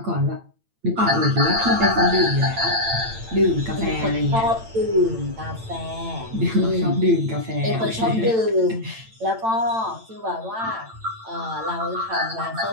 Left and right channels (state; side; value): late; left; 8.9 ms